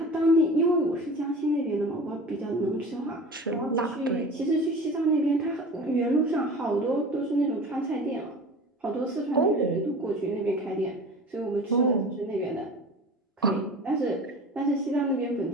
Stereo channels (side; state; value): both; normal; correlation 0.38